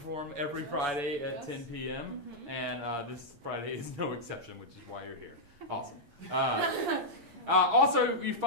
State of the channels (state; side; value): late; left; 8.6 ms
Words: every Friday at 10 p.m. And this Friday is no exception, which is why you're here. Awesome. Also, you